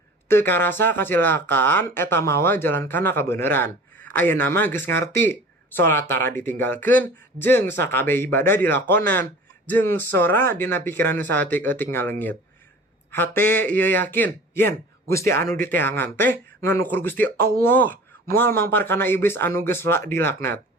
Teu karasa kacilakaan eta mawa jalan kana kabeneran. Ayeuna mah geus ngarti. Salat tara ditinggalkeun jeung sakabeh ibadah dilakonan. Jeung sora dina pikiran nu saeutik-eutik ngaleungit. Hate ieu yakin, yen Gusti anu diteangan teh nganukur Gusti Allah. Moal mampar kana iblis anu geus dilaknat.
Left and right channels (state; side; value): normal; both; correlation 0.42